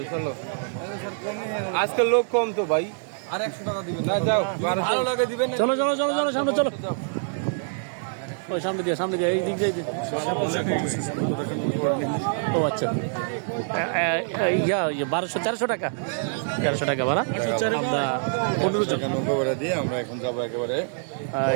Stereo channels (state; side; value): silent; left; digital silence